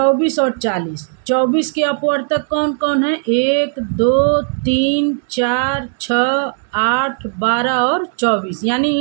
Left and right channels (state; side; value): silent; left; digital silence